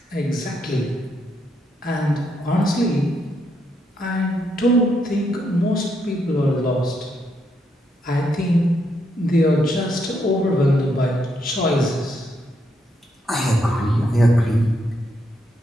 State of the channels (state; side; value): normal; both; correlation 0.78